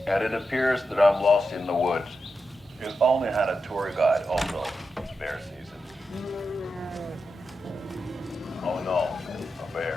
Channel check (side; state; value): both; normal; correlation 0.88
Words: and it appears that I'm lost in the woods. You've only had a tour guide, also. It's bear season. Oh no, a